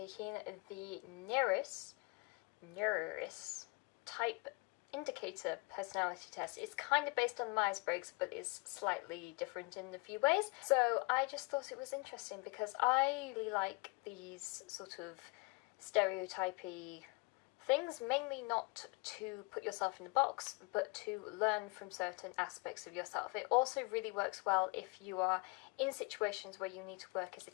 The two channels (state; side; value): quieter; right; 28.5 dB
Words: the Neuris type indicator personality test. It's kind of based on Myers-Briggs, but is slightly different in a few ways. So I just thought it was interesting because I really like these sort of stereotypy things, mainly not to put yourself in a box, but to learn from certain aspects of yourself. It also really works well if you are in situations where you need to work as a